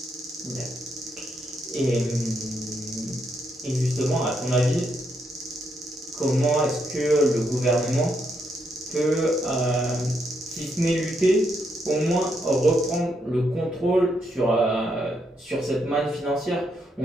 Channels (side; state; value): both; normal; correlation 0.78